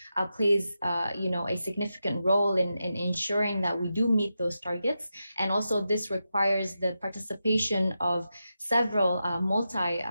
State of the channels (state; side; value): inverted; both; correlation -0.89